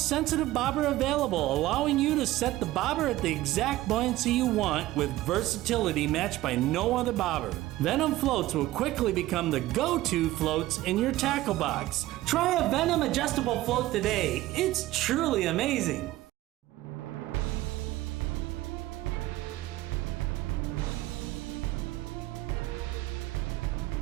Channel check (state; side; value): quieter; left; 16.4 dB